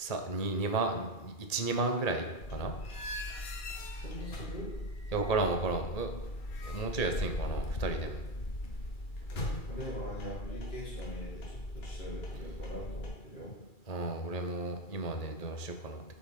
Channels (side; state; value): right; late; 2.3 ms